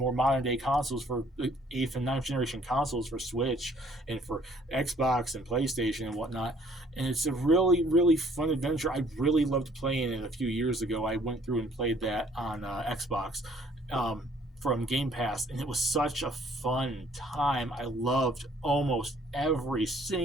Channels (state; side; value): normal; both; correlation 0.60